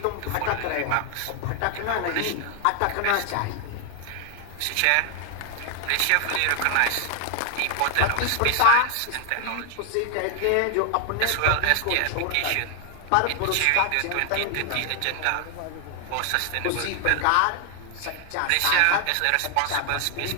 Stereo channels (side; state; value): both; different; correlation 0.00